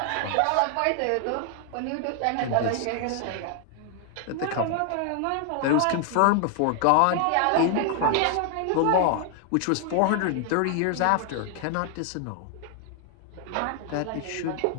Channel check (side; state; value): both; different; correlation 0.00